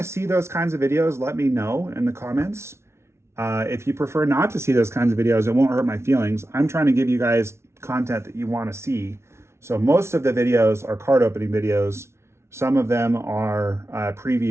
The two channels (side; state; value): left; late; 0.13 ms